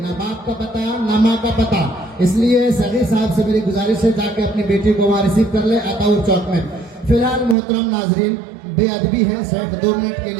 ना बाप का पता ना माँ का पता। इसलिए सगीर साहब से मेरी गुजारिश है, जाके अपनी बेटी को वहाँ रिसीव कर ले अताउर चौक में। फिलहाल मोहतरम नाजरीन, बेअदबी है, सिर्फ 2 मिनट के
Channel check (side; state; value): left; drops out; at 7.6 s